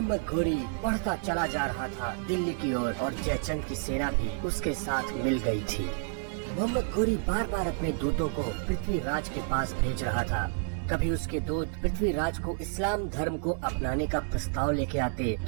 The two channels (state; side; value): silent; left; digital silence